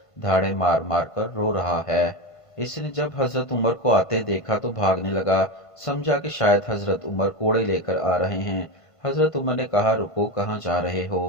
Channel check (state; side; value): late; right; 1.5 ms